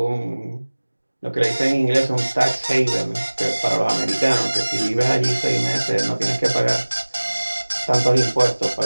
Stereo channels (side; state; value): both; inverted; correlation -1.00